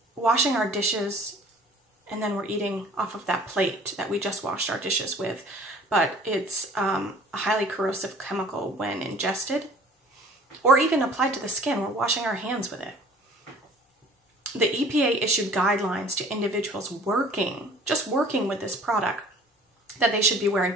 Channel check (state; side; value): normal; both; correlation 0.50